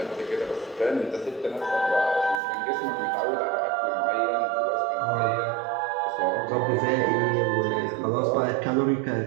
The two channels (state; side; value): drops out; left; at 2.4 s